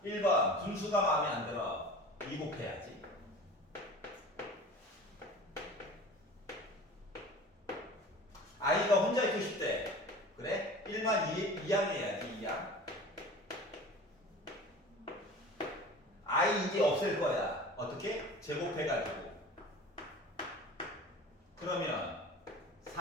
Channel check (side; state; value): both; normal; correlation 0.39